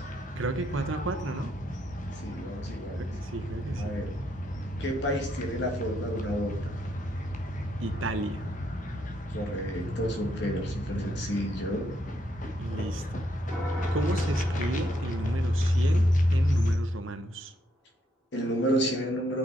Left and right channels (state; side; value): normal; both; correlation 0.74